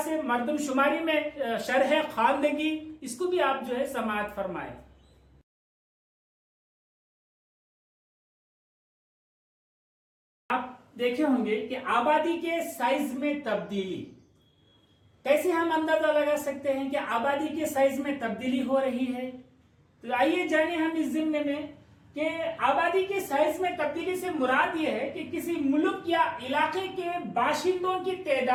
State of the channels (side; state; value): both; identical; correlation 1.00